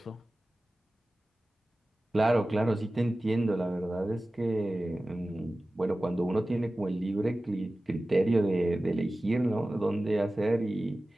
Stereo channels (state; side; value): normal; both; correlation 0.96